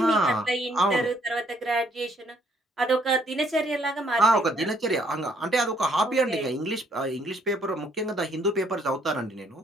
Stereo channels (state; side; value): normal; both; correlation 0.67